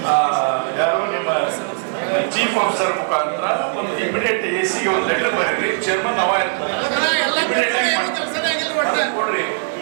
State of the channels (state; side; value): silent; left; digital silence